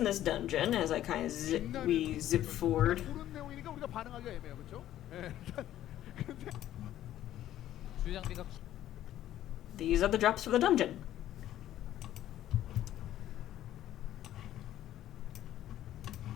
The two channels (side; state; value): right; quieter; 12.7 dB